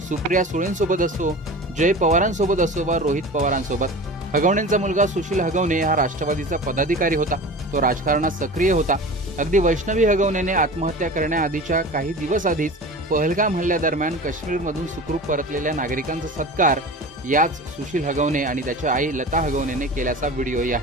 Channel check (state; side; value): normal; both; correlation 0.35